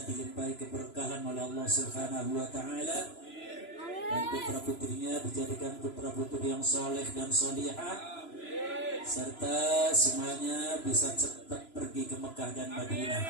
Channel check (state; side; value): late; right; 3.0 ms